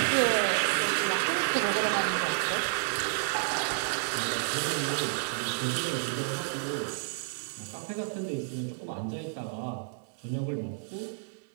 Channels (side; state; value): left; silent; digital silence